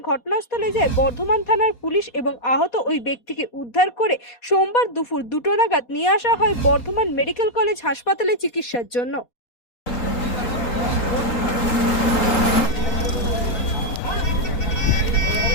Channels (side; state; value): right; late; 4.2 ms